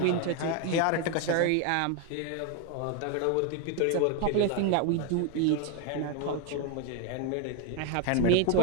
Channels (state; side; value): different; both; correlation 0.02